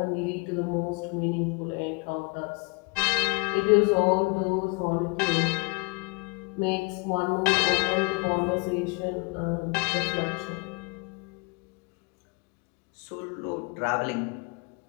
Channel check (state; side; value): quieter; right; 30.5 dB